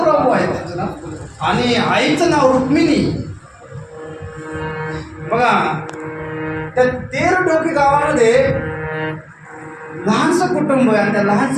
आहे त्यांचं नाव. आणि आईचं नाव रुक्मिणी. बघा त्या तेरडोकी गावामध्ये लहानसं कुटुंब आहे आणि त्या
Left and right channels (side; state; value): both; identical; correlation 1.00